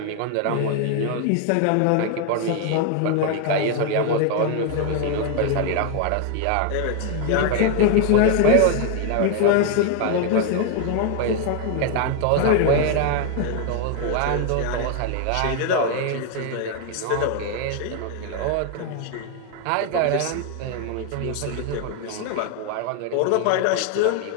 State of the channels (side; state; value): both; different; correlation 0.00